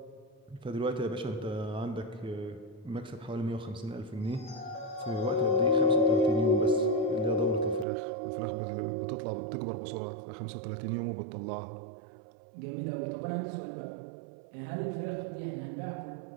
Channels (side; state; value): left; drops out; at 7.9 s